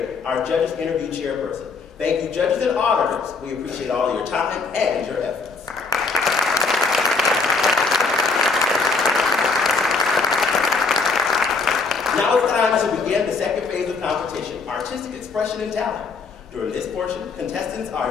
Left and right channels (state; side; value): quieter; right; 4.3 dB